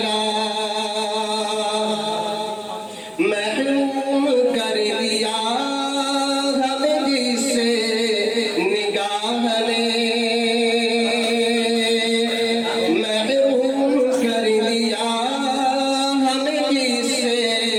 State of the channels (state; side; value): identical; both; correlation 1.00